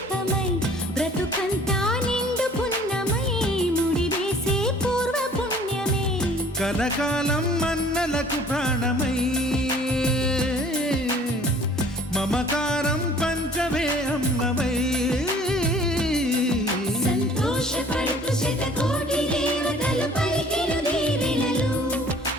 బ్రతుకంతా నిండు పున్నమై ముడివేసే పూర్వ పుణ్యమే కలకాలం మన్నలకు ప్రాణమై మమకారం పంచవే అమ్మవై సంతోషపడుతూ శతకోటి దేవతలు పలికెను దీవెనలు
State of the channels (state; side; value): normal; both; correlation 0.52